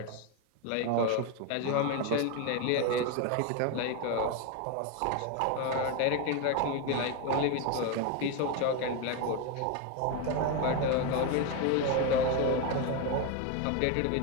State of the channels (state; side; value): different; both; correlation 0.02